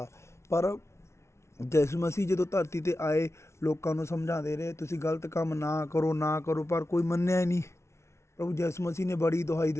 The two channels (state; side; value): late; right; 0.13 ms